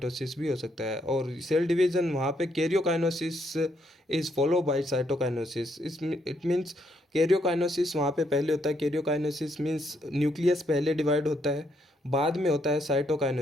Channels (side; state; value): both; normal; correlation 0.74